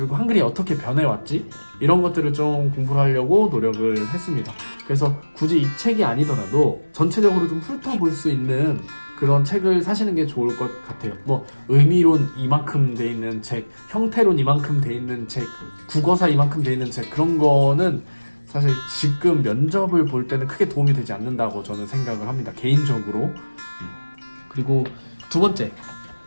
한글이 어떻게 변해왔지? 이런 것들을 좀 공부를 하려고 노력을 했습니다. 그래서 굳이 이 책이 아니더라도 전체적으로 좀 훑어볼 수 있는 그런 책을 사시는 게 좋을 것 같아요. 뭐 의미론 이만큼 돼 있는 책, 형태론 이만큼 돼 있는 책, 국어사 이만큼 돼 있는 책, 그런 거는 사실 지금 면접을 볼 때는 크게 도움이 되지 않는다고 저는 생각을 합니다. 개인적으로. 그리고 두 번째,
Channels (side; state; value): both; inverted; correlation -1.00